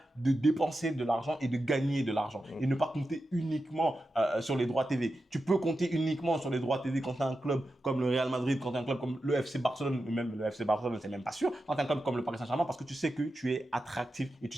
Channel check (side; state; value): both; normal; correlation 0.90